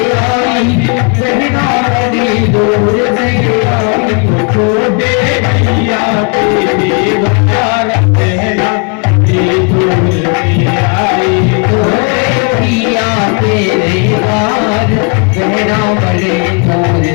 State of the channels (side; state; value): right; quieter; 35.1 dB